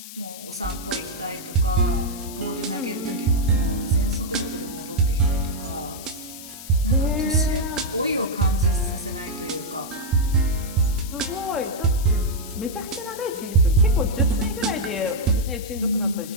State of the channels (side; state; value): left; noise; hiss, 13 dB below the sound